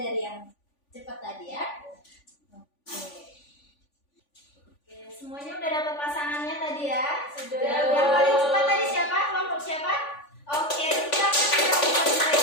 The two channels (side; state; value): right; late; 3.5 ms